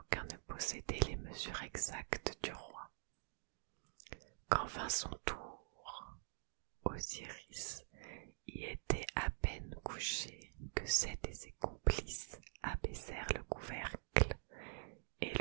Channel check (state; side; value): silent; left; digital silence